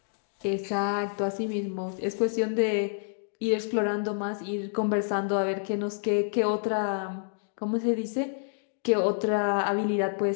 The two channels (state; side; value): silent; right; digital silence